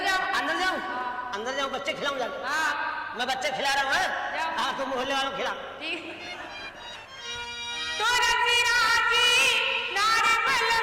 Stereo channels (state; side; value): identical; both; correlation 1.00